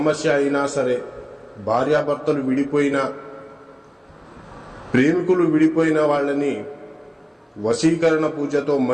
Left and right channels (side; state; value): both; identical; correlation 1.00